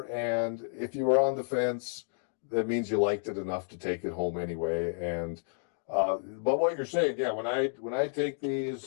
and if you were on the fence, that means you liked it enough to take it home anyway. And but what you're saying, yeah, when I take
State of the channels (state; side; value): silent; right; digital silence